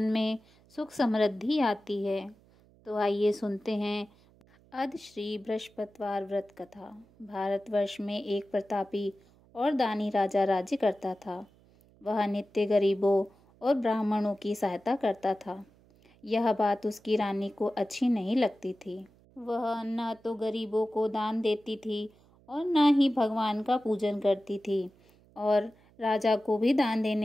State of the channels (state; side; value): noise; right; hum, 29 dB below the sound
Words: में सुख समृद्धि आती है। तो आइए सुनते हैं अद श्री बृहस्पतिवार व्रत कथा। भारतवर्ष में एक प्रतापी और दानी राजा राज्य करता था। वह नित्य गरीबों और ब्राह्मणों की सहायता करता था। यह बात उसकी रानी को अच्छी नहीं लगती थी। वह न तो गरीबों को दान देती थी और न ही भगवान का पूजन करती थी और राजा को भी दान